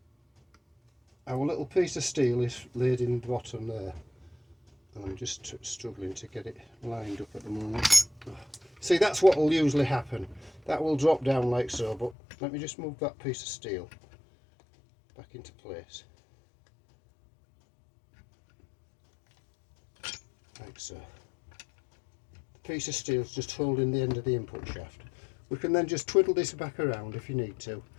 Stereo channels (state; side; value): drops out; right; at 12.2 s